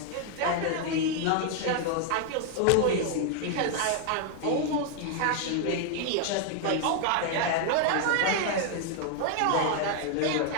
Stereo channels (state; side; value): different; both; correlation 0.00